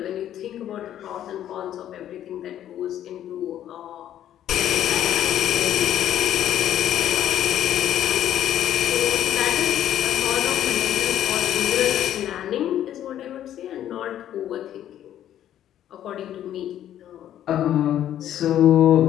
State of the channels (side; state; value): right; quieter; 11.3 dB